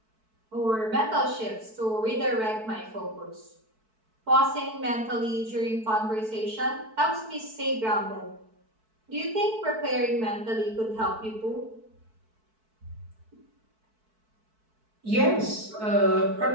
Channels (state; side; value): late; left; 4.6 ms